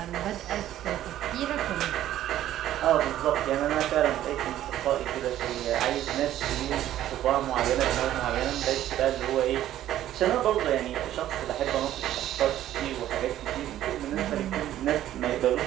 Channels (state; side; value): quieter; left; 12.6 dB